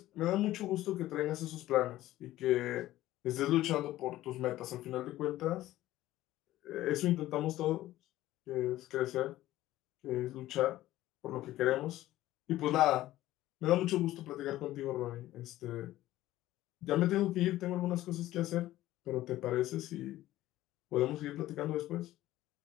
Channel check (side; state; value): right; quieter; 15.1 dB